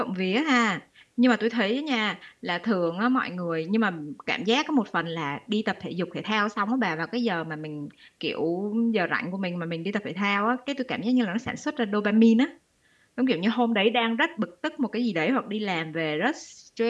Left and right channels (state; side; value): identical; both; correlation 1.00